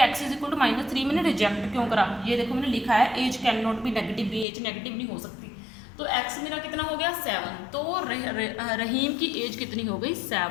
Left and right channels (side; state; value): right; drops out; at 4.5 s